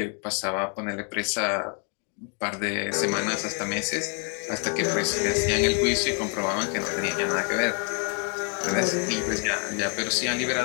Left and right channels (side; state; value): right; quieter; 39.1 dB